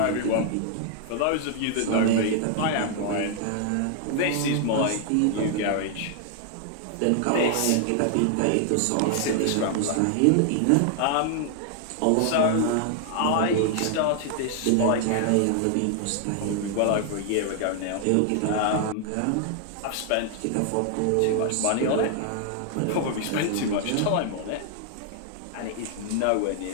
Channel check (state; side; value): different; both; correlation 0.00